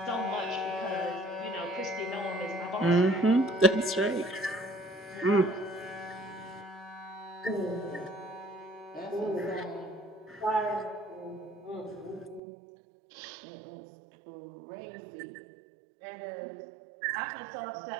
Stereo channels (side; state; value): left; drops out; at 12.4 s